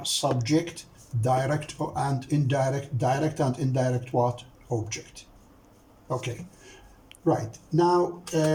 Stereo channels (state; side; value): identical; both; correlation 1.00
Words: subject, direct and indirect what? Object. Okay, right. Now,